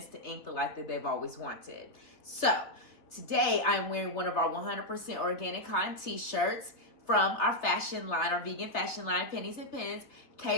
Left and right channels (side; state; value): right; late; 3.4 ms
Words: to ink the life that they've always wanted. So, today I'm wearing one of our 100% organic cotton t-shirts from our fashion line, our vegan fashion line, Pennies and Pens,